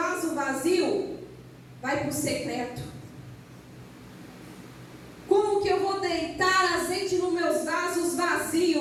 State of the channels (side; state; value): both; identical; correlation 1.00